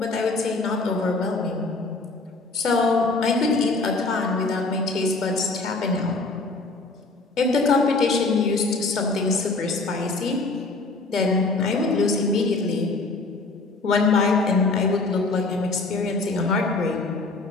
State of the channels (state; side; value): quieter; right; 3.5 dB